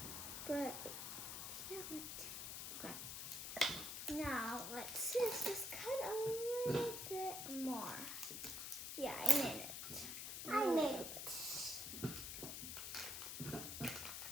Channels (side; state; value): left; noise; hiss, 5 dB below the sound